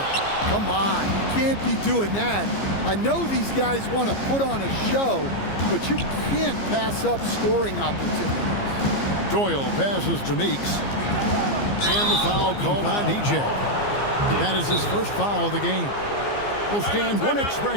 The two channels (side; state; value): right; late; 15 ms